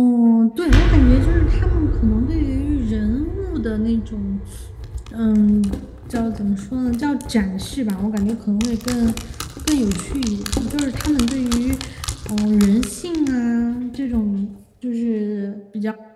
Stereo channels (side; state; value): both; identical; correlation 1.00